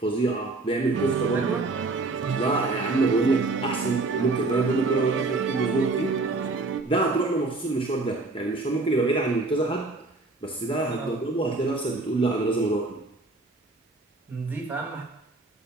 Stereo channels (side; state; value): left; quieter; 3.3 dB